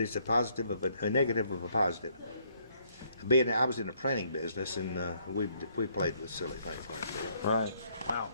a positive of a negative of a positive. I was in the printing business, and we played with silly things like that. Right. Wow.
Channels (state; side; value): inverted; both; correlation -0.68